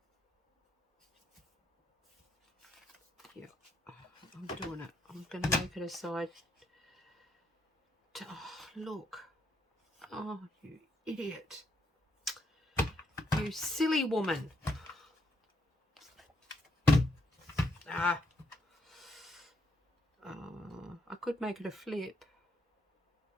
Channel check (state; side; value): normal; both; correlation 0.76